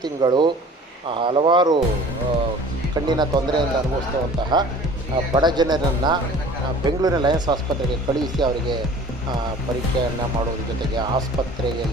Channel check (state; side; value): normal; both; correlation 0.46